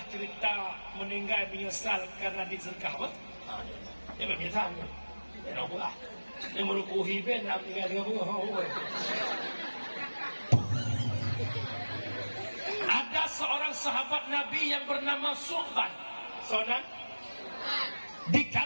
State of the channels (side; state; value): both; inverted; correlation -1.00